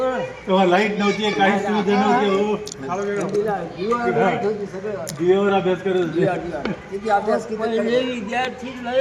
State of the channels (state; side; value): identical; both; correlation 1.00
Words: लाईट नव्हती, काही सुविधा नव्हती. हो, दिव्यावर अभ्यास करत होते. किती अभ्यास पहिले विद्यार्थी लय